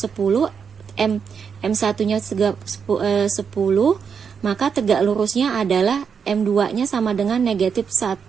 M1-nya 10, maka tegak lurusnya adalah M2-nya sama dengan negatif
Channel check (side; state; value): left; quieter; 6.5 dB